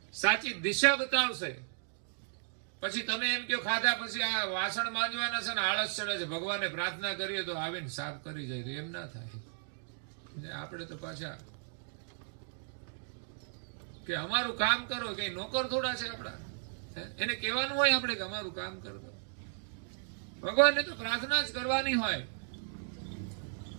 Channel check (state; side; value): silent; left; digital silence